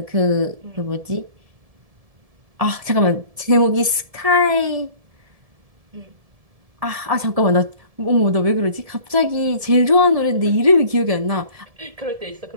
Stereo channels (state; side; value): late; left; 1.7 ms